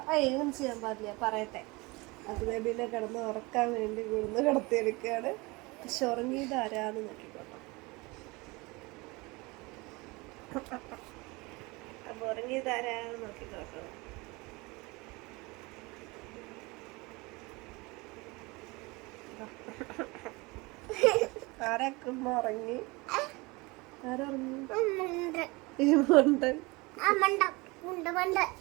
ഏതും ചെയ്യാൻ പാടില്ല, പറയട്ടെ. അക്കു ബേബീനെ കിടന്ന് ഉറക്കാൻ വേണ്ടി കൊണ്ടുവന്ന് കിടത്തി എടുക്കുകയാണ്. പക്ഷെ ഉറങ്ങിയത് ആരാന്ന് നോക്കിക്കോട്ടോ. അപ്പൊ ഉറങ്ങിയത് ആരാന്ന് നോക്കിക്കോട്ടോ. ആരക്കുമ്പോ ഉറങ്ങി, ആരുറങ്ങി?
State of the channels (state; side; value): quieter; left; 24.6 dB